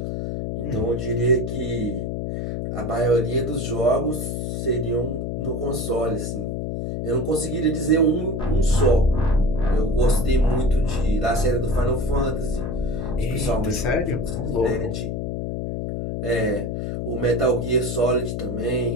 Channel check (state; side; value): noise; left; hum, 3 dB below the sound